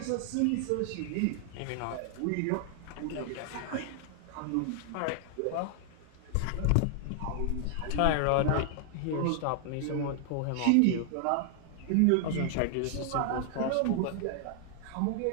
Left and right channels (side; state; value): both; different; correlation 0.00